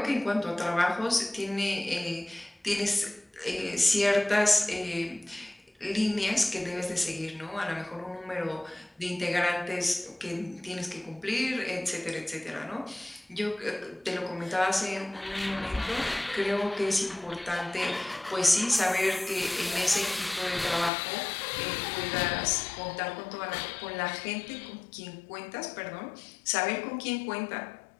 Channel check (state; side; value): drops out; right; at 20.9 s